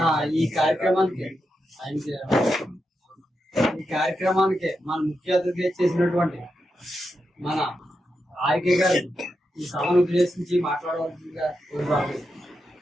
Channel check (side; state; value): both; normal; correlation 0.87